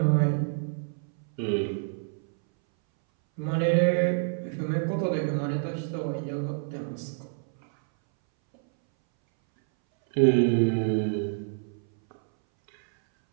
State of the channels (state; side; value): silent; left; 60 dB below the other